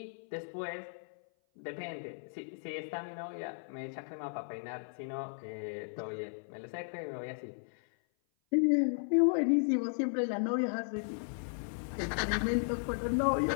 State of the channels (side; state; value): right; silent; 54 dB below the other